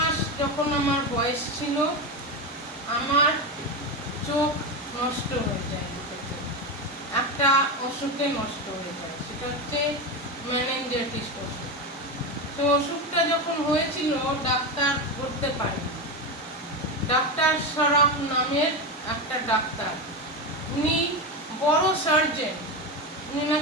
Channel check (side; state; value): both; normal; correlation 0.16